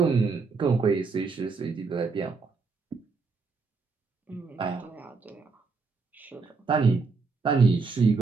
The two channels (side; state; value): left; quieter; 4.4 dB